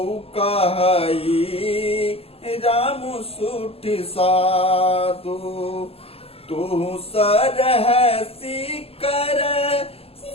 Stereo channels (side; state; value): right; late; 0.28 ms